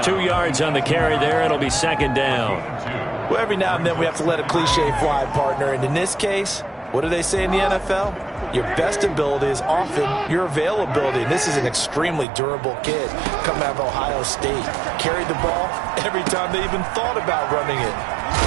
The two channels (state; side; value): drops out; left; at 12.2 s